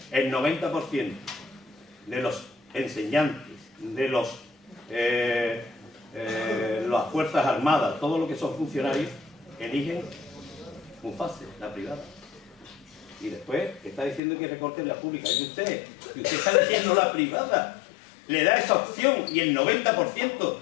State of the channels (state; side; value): drops out; right; at 14.2 s